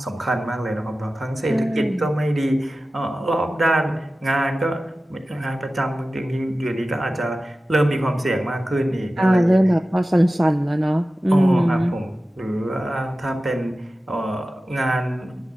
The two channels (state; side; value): normal; both; correlation 0.95